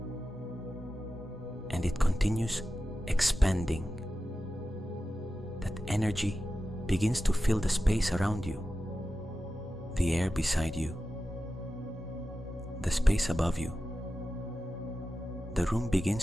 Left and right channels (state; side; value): normal; both; correlation 0.93